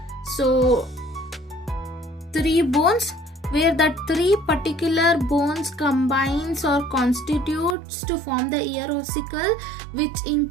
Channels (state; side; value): drops out; left; at 7.8 s